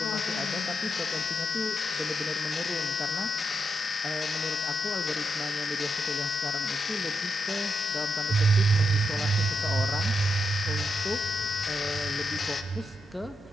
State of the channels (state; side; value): normal; both; correlation 0.84